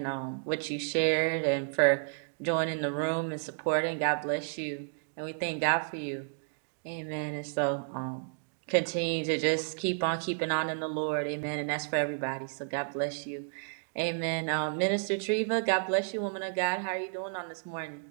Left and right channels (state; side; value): silent; left; digital silence